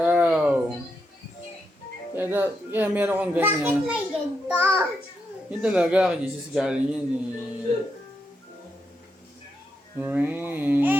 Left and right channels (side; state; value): both; normal; correlation 0.83